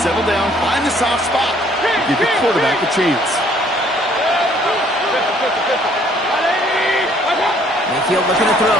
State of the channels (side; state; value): both; normal; correlation 0.62